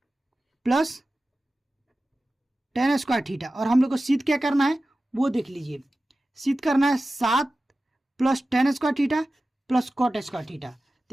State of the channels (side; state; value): both; normal; correlation 0.95